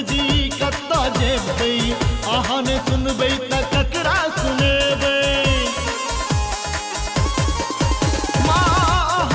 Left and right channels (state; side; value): identical; both; correlation 1.00